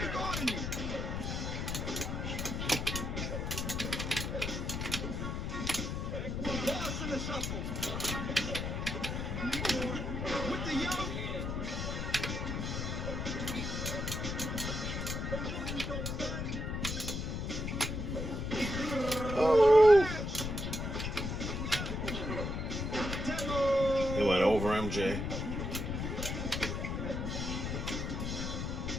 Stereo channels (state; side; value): noise; left; rumble, 2 dB below the sound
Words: guarding you. Lost in the shuffle. With the young. Oh. He went over MJ.